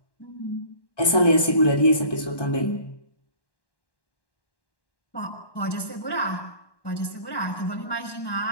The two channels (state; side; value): late; right; 1.1 ms